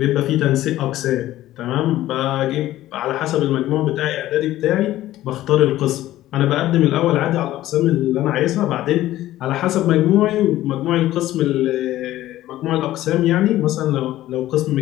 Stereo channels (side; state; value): right; quieter; 14.7 dB